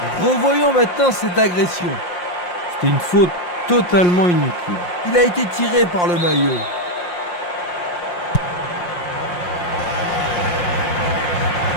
Revoyons maintenant cette agression. C'était une faute totalement inutile. Il a été tiré par le maillot.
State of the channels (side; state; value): right; late; 5.7 ms